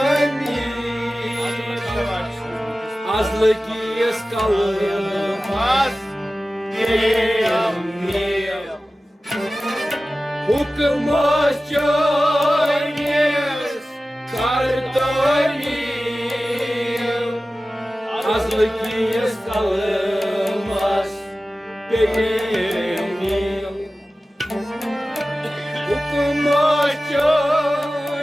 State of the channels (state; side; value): normal; both; correlation 0.96